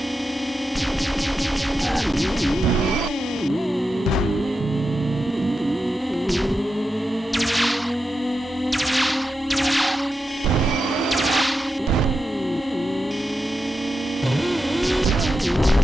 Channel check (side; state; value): both; normal; correlation 0.89